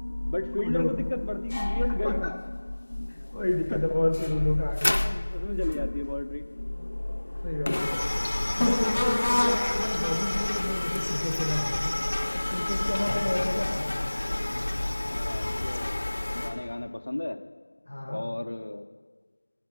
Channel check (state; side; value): inverted; both; correlation -1.00